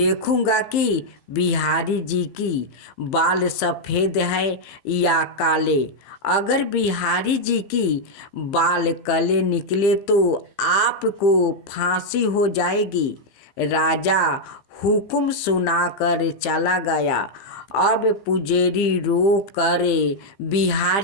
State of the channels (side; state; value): right; late; 15 ms